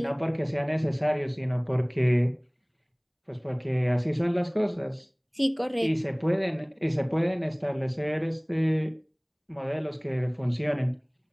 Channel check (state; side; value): identical; both; correlation 1.00